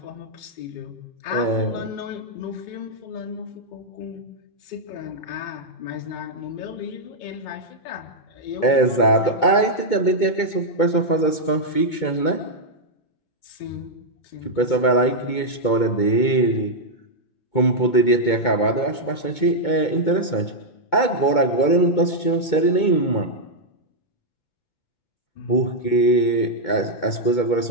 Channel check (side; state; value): right; late; 2.2 ms